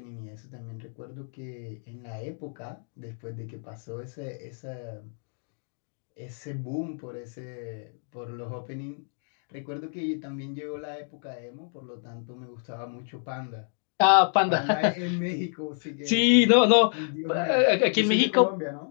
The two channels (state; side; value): silent; right; 59 dB below the other